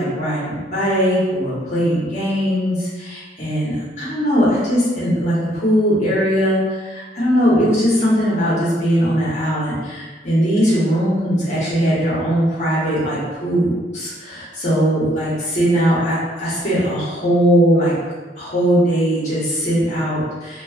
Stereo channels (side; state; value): both; normal; correlation 0.67